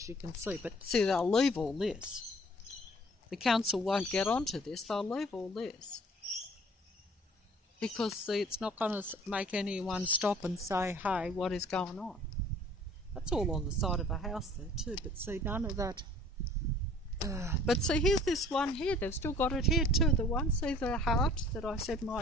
you can see. But see, they'll leave all this. The council won't get onto this. They'll leave all this. Because, see, it's not going to make anyone stop and say, hey, what is going on? That's all on the side of a house there too. But see, none of that... but see, here's this one here. They've still got it here too. The one, see the heart that I said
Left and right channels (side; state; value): both; normal; correlation 0.52